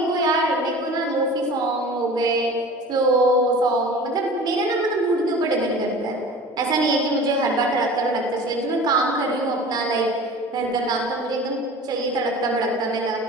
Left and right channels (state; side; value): normal; both; correlation 0.40